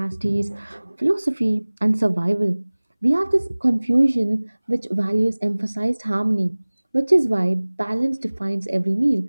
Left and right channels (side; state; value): both; inverted; correlation -1.00